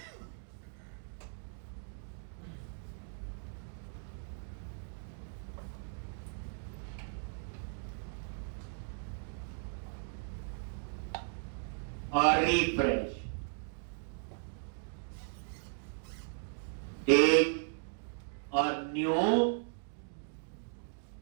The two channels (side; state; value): left; silent; 53 dB below the other